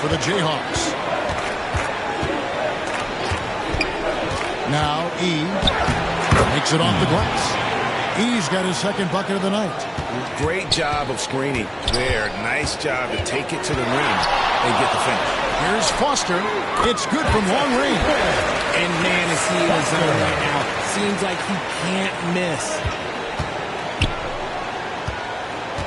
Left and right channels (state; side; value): identical; both; correlation 1.00